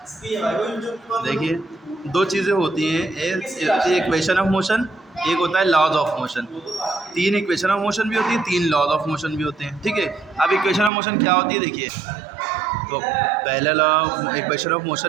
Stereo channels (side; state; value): left; drops out; at 10.9 s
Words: देखिए दो चीज़ें होती हैं, एक होती है इक्वेशन ऑफ मोशन, एक होता है laws of motion. 3 equation of motion भी होती है, 3 लॉज ऑफ मोशन भी होते हैं, ठीक है। अब इक्वेशन ऑफ मोशन क्या होती है देखिए, तो पहला लॉ इक्वेशन ऑफ